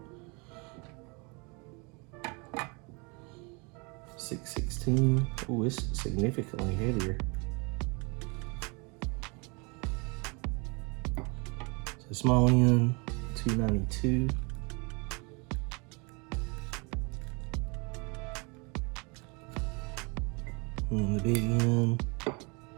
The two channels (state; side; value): quieter; left; 30.7 dB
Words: 616. Oh, it's significantly heavier. small end, 292. And the big end,